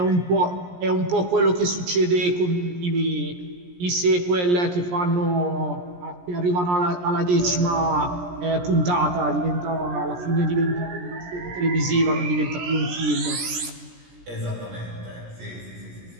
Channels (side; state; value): left; late; 17 ms